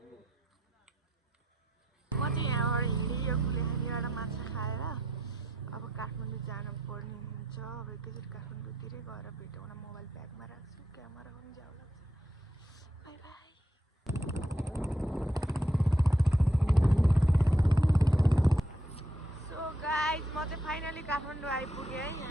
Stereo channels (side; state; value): both; normal; correlation 0.76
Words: म चाहिँ यहाँबाट हिँडेँ यो कुलेखानीबाट माछा खाएर अब काठमाडौँ जानु पर्ने हुन्छ अब एकैचोटि काठमाडौँतिरै गएर भेटौँ न मोबाइल ब्यागमा राख्छु क्यामेरा पनि जाऊ लाग्छ बाई बाई सो गाइज म चाहिँ फाइनली काठमाडौँ आइपुगेँ है